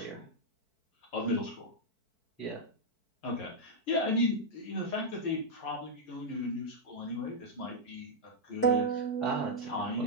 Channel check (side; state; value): right; late; 4.6 ms